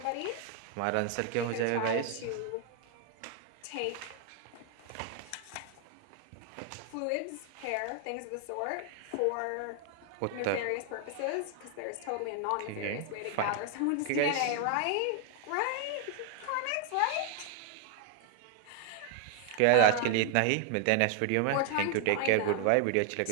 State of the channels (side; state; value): both; different; correlation 0.00